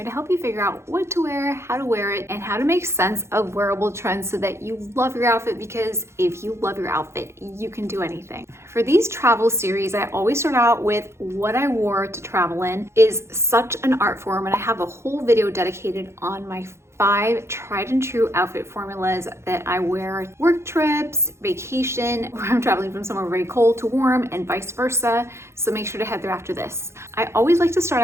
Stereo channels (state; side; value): late; left; 0.13 ms